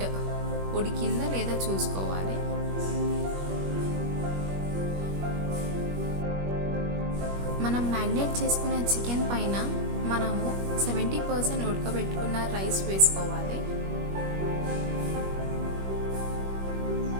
ఉడికిందా లేదా చూసుకోవాలి. మనం మ్యారినేట్ చేసుకున్న చికెన్ పైన మనము 70% ఉడకబెట్టుకున్న రైస్ వేసుకోవాలి.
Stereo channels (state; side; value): late; left; 21 ms